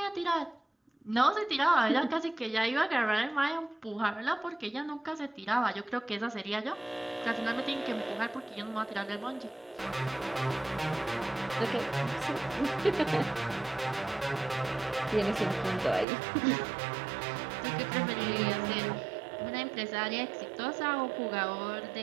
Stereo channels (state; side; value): drops out; left; at 16.1 s